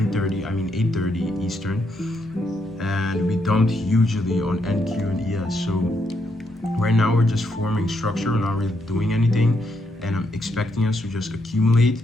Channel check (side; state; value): both; normal; correlation 0.78